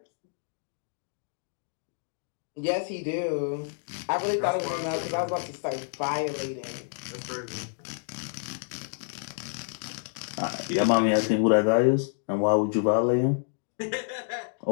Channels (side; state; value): right; silent; digital silence